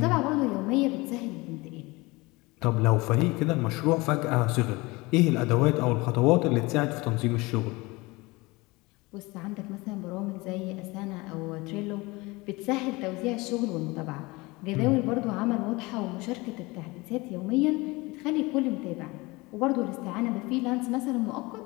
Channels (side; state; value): right; quieter; 23.2 dB